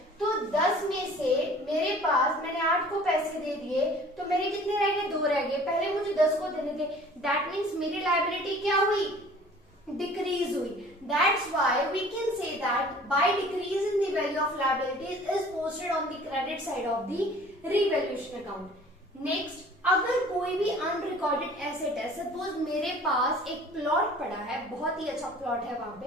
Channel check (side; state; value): both; normal; correlation 0.49